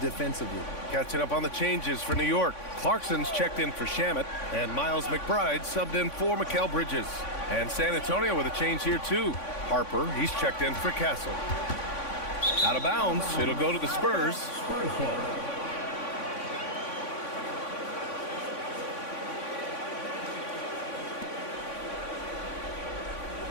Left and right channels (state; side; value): late; right; 3.5 ms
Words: defensively. Catching up on the changes for New York. Clarkson's checked in for Shamet. And Miles McBride subbed in for Mikal Bridges. And San Antonio with a change here too. Harper, he's checked in for Castle. Out of bounds. It'll go to the Spurs.